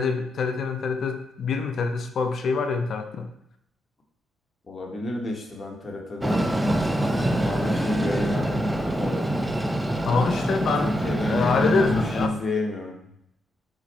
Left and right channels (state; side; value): normal; both; correlation 0.84